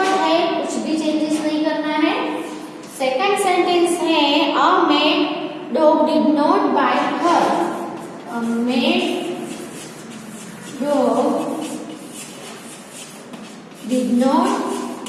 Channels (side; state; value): both; identical; correlation 1.00